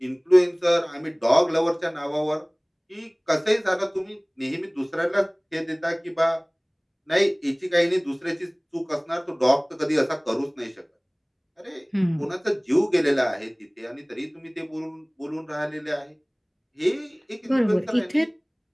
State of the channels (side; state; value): both; identical; correlation 1.00